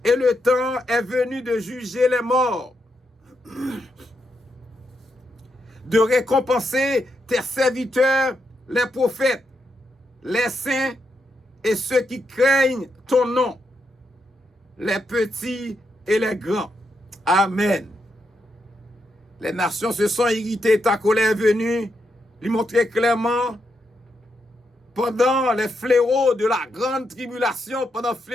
Et le temps est venu de juger les morts, de récompenser tes serviteurs, les prophètes, les saints et ceux qui craignent ton nom, les petits et les grands. Amen. Les nations se sont irritées, ta colère est venue, lui montrer clairement, pendant les fléaux de la grande tribulation, pendant le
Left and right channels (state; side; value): normal; both; correlation 0.82